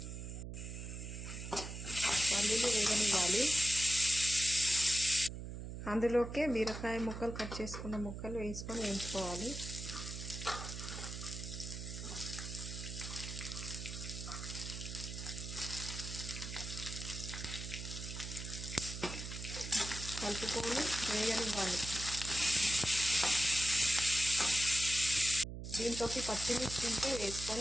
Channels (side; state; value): right; noise; hum, 8 dB below the sound